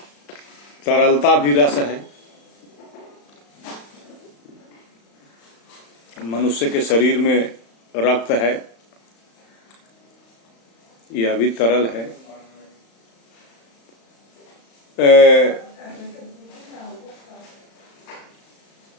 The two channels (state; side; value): late; right; 35 ms